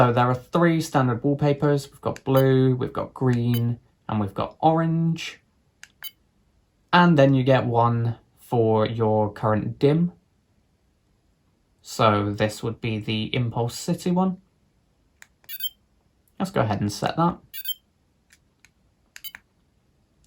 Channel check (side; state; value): both; identical; correlation 1.00